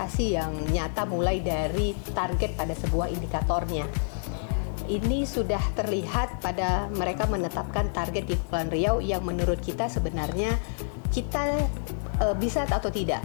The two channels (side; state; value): right; silent; digital silence